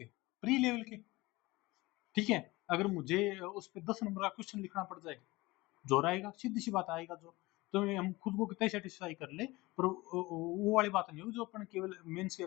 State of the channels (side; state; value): right; quieter; 21.1 dB